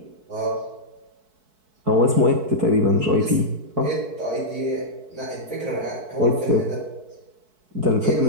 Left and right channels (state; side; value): late; left; 4.6 ms